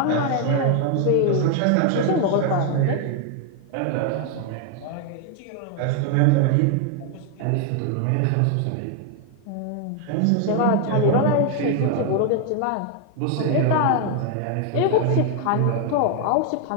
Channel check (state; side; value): different; both; correlation 0.01